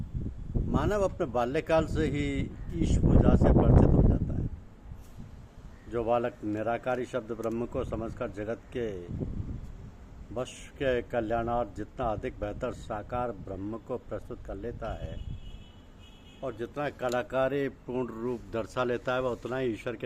मानव अपने बाल्यकाल से ही ईश पूजा से परिचित हो जाता है। जो बालक निराकारी शब्द ब्रह्म को समझकर जगत के वश के कल्याणार्थ जितना अधिक बेहतर साकार ब्रह्म को प्रस्तुत कर लेता है और जितना कलाकारी पूर्ण रूप दर्शा लेता है, वह उतना ही ईश्वर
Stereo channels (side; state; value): both; identical; correlation 1.00